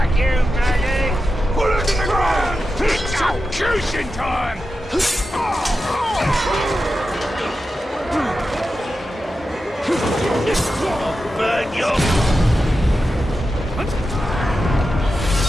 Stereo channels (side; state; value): both; normal; correlation 0.91